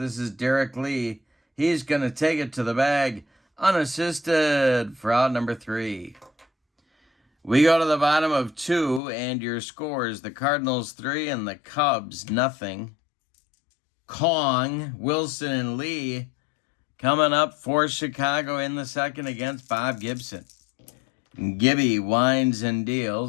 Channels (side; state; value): right; drops out; at 9.0 s